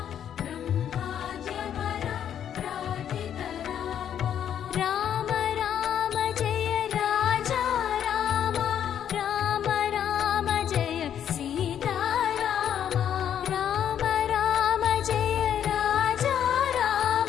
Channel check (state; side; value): quieter; right; 9.5 dB